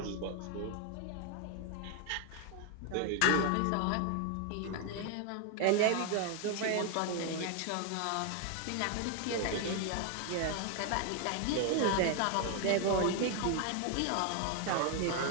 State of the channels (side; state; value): both; different; correlation 0.00